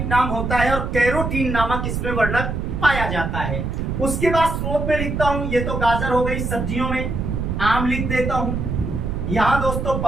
नाम होता है, और कैरोटीन नामक इसमें वर्णक पाया जाता है। उसके बाद स्रोत में लिखता हूं, ये तो गाजर हो गई, सब्जियों में आम लिख देता हूं, यहां दोस्तों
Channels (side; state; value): right; noise; rumble, 2 dB below the sound